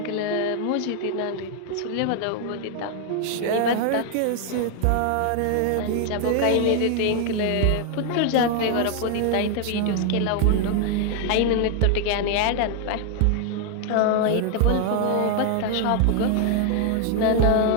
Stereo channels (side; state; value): both; different; correlation 0.00